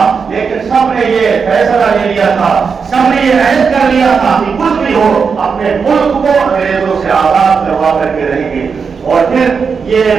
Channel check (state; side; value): quieter; left; 5.7 dB